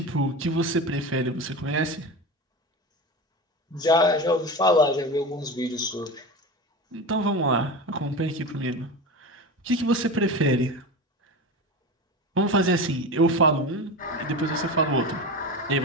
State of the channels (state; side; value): normal; both; correlation 0.26